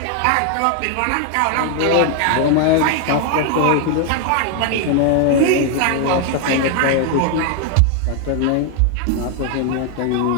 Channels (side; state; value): both; different; correlation 0.00